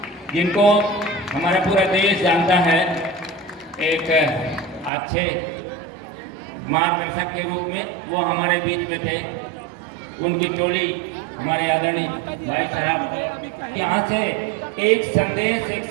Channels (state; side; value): drops out; left; at 4.9 s